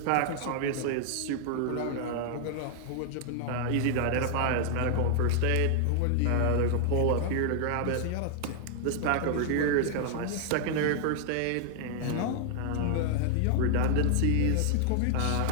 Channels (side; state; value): both; different; correlation -0.01